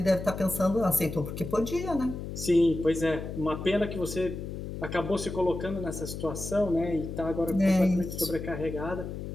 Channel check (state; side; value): noise; left; hum, 7 dB below the sound